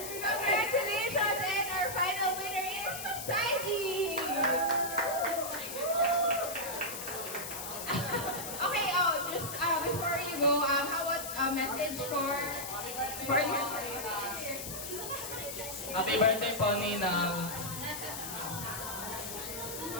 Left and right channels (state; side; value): noise; left; hiss, 7 dB below the sound